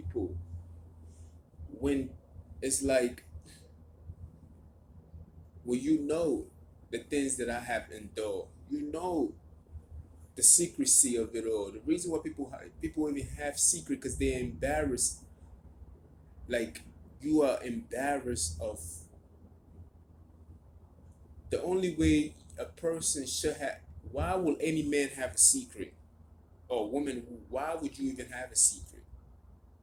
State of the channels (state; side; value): identical; both; correlation 1.00